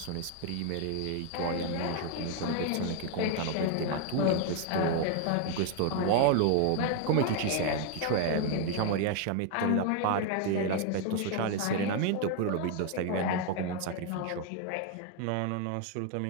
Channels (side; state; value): both; different; correlation 0.01